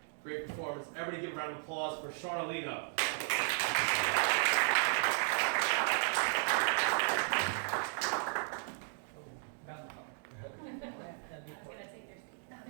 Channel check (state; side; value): silent; left; 54 dB below the other